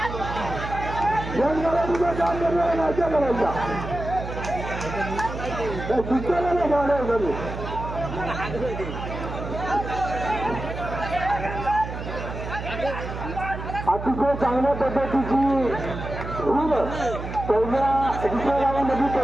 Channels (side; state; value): right; noise; hum, 7 dB below the sound